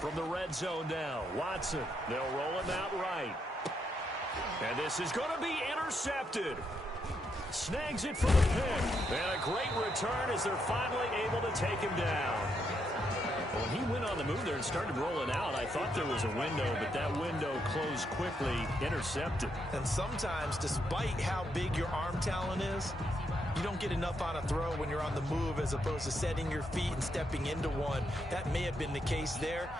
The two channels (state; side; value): normal; both; correlation 0.79